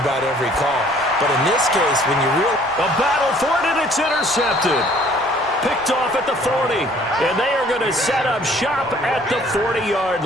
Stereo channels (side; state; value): right; noise; rumble, 23 dB below the sound